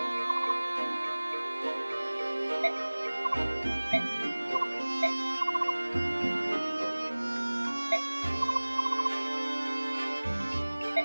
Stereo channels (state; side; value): inverted; both; correlation -1.00